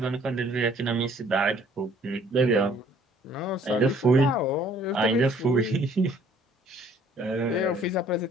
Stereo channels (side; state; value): both; normal; correlation 0.58